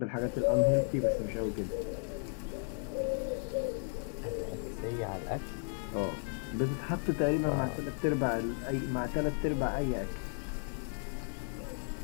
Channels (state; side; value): silent; right; 55 dB below the other